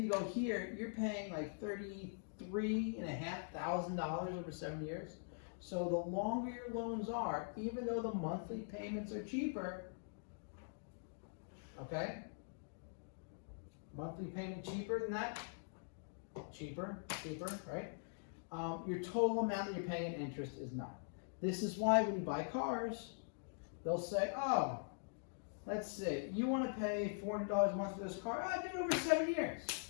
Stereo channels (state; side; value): silent; right; digital silence